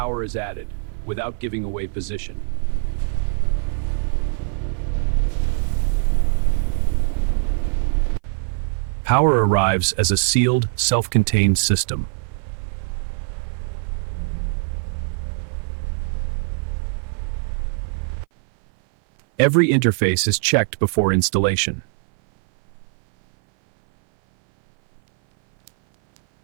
is added, without giving away position. Power arrives as a sealed, self-contained system. Every interface is checked before installation.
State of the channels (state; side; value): silent; left; 58 dB below the other